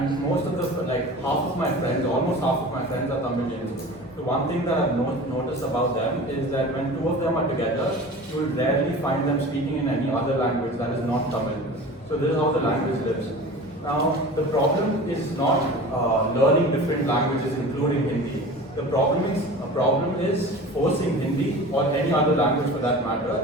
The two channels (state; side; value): normal; both; correlation 0.37